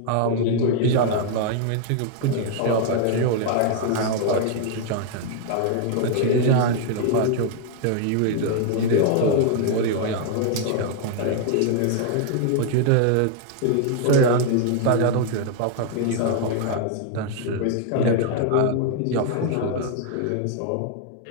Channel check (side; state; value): both; different; correlation 0.00